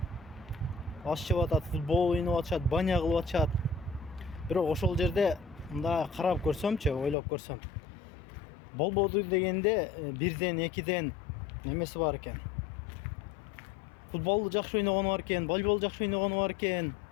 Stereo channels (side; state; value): right; drops out; at 7.2 s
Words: аш жеп атат, футбол ойноп атышат, баня кылып атышат. Бирок ошол жерде мындай карап көрсөмчү, ойлоп көрсөм, болбоду дегенде бирден, экиден немеси бар экен. Футболду жакшы ойногону бар экен, волейбол жакшы ойногону бар экен,